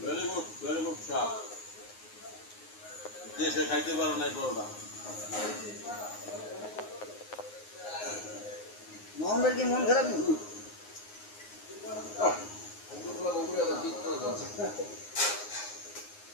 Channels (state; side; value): late; right; 9.6 ms